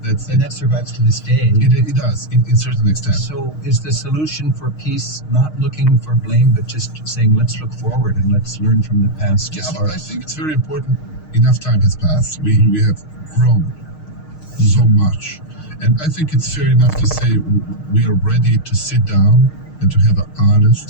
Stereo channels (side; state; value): right; late; 6.5 ms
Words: That's And that survives to this day. it does, in certain extent. So is the solution for peace not looking for blame, but just saying, let's look forward and let's learn from the past? Yeah, as but far I as- think it's very important. Enough time has passed. We have grown so much. And I think it's fair enough to say we are ready to sit down and to have an